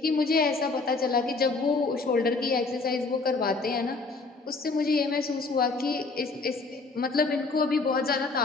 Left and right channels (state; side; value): quieter; right; 3.9 dB